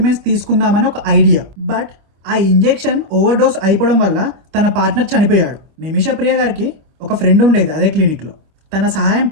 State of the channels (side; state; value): left; late; 26 ms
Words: తీసుకుందామని ఒక ఐడియా. బట్ ఆ ఇంజెక్షన్ ఓవర్ డోస్ అయిపోవడం వల్ల తన పార్ట్నర్ చనిపోయాడు. నిమిషా ప్రియ గారికి ఒక ఫ్రెండ్ ఉండేది అదే క్లినిక్లో. తన